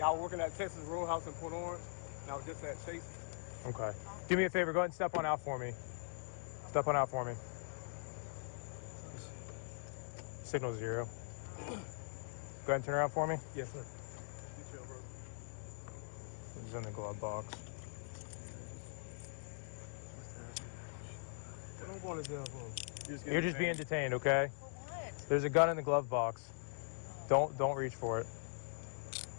working at Texas Roadhouse in Port Orange, and I was just at Chase. Okay. Do me a favor, go ahead and step on out for me. Step on out for me. Signal 0. Go ahead and turn around for me. Yes, sir. You chill, bro. It's in the glove box. What don't want to do for? You're just being detained, okay? For what? There's a gun in the glove box. Don't reach for it.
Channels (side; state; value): right; silent; digital silence